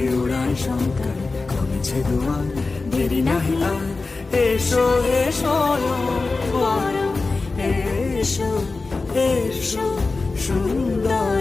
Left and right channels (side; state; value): right; quieter; 3.7 dB